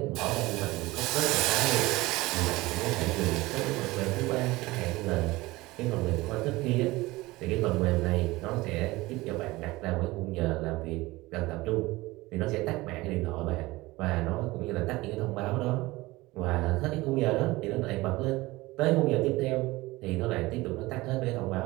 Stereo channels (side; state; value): left; quieter; 20.3 dB